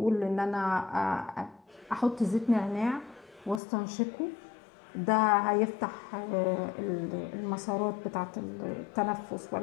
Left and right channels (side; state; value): right; drops out; at 3.6 s